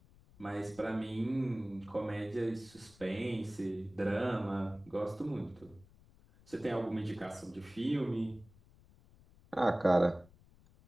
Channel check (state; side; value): noise; left; rumble, 26 dB below the sound